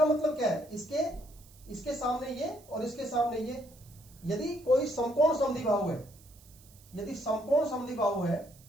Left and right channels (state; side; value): noise; right; hiss, 25 dB below the sound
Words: मतलब क्या है? इसके सामने ये और इसके सामने ये, यदि कोई समकोण समद्विबाहु है, यदि समकोण समद्विबाहु है,